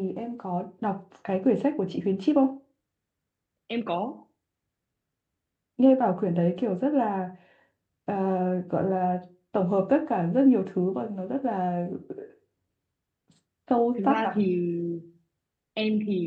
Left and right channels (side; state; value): both; identical; correlation 1.00